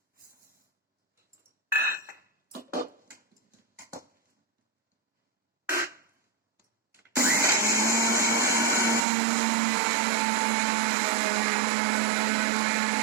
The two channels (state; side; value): drops out; left; at 9.0 s